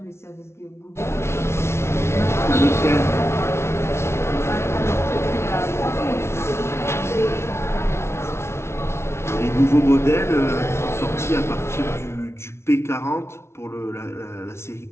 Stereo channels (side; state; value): right; late; 0.13 ms